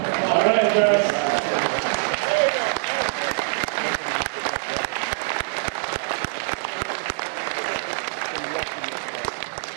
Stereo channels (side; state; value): left; silent; 61 dB below the other